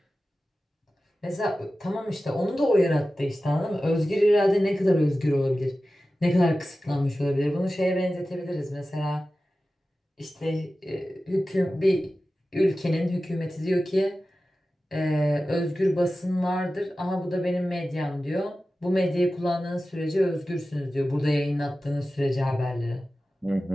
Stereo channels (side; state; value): both; normal; correlation 0.95